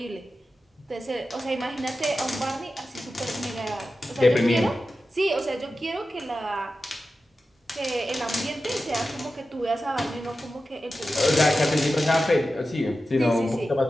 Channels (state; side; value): normal; both; correlation 0.93